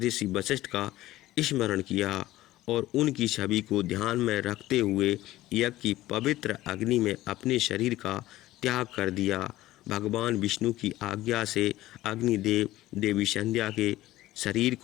वशिष्ठ का स्मरण किया और उनकी छवि को ध्यान में रखते हुए यज्ञ की पवित्र अग्नि में अपने शरीर का त्याग कर दिया। भगवान विष्णु की आज्ञा से अग्निदेव देवी संध्या के शरीर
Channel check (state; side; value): quieter; right; 16.0 dB